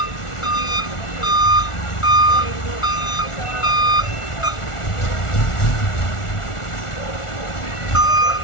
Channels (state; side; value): late; right; 1.4 ms